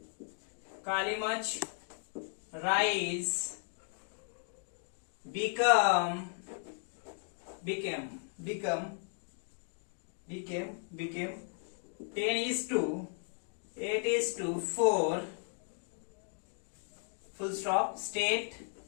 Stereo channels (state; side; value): silent; right; 54 dB below the other